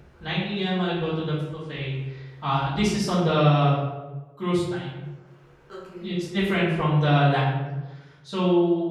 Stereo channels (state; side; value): identical; both; correlation 1.00